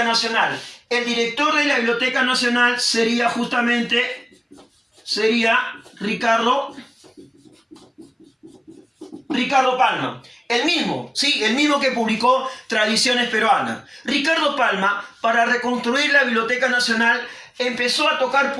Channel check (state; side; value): identical; both; correlation 1.00